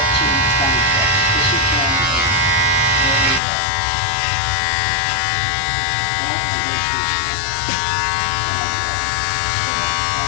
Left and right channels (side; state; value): right; drops out; at 3.4 s